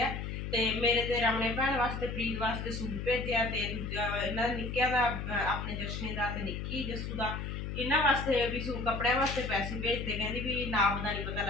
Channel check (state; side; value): noise; left; hum, 5 dB below the sound